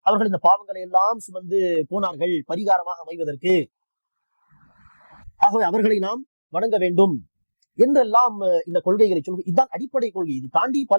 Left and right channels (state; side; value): inverted; both; correlation -1.00